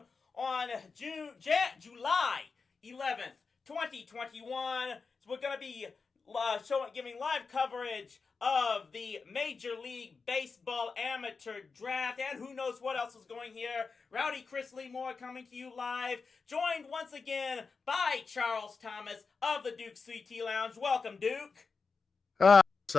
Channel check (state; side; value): quieter; right; 4.8 dB